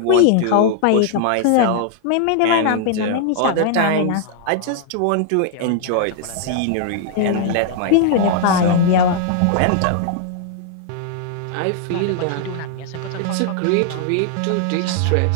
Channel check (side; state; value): both; different; correlation -0.01